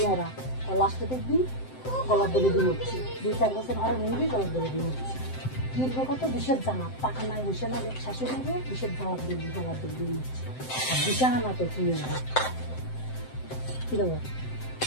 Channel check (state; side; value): late; right; 7.8 ms